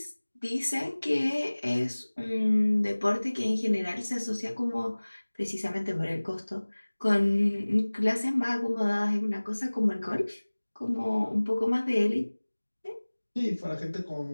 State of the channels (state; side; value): inverted; both; correlation -1.00